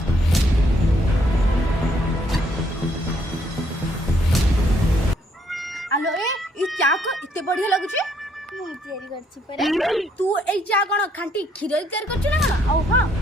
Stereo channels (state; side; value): normal; both; correlation 0.69